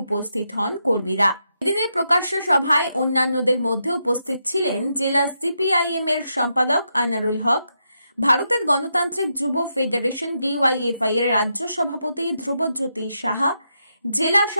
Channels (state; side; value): inverted; both; correlation -0.83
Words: উপস্থিত হন কর্মীরা। এদিনের প্রকাশ্য সভায় অন্যান্যদের মধ্যে উপস্থিত ছিলেন জেলা CPIM এর সম্পাদক আনারুল হক, ভারতের গণতান্ত্রিক যুব ফেডারেশন DYFI এর রাজ্য সভাপতি ধ্রুবজ্যোতি সাহা, জেলা